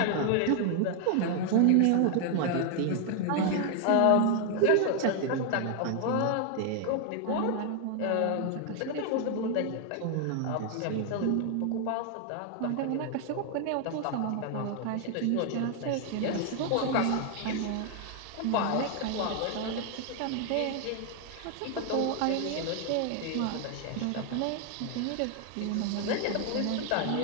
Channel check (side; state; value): both; different; correlation 0.00